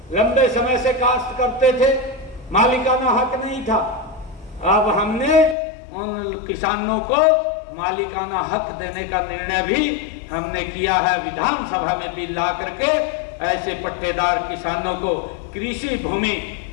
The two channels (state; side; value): drops out; right; at 5.6 s